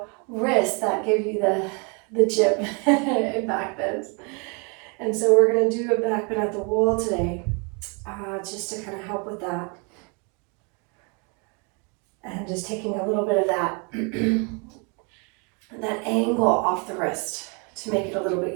wrist that give you the chip in back bends. And so we're going to do a back bend at the wall today, just to kind of help with that. And just taking a little bit of that, that angle off the wrist to make it a little bit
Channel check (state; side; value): quieter; left; 34.2 dB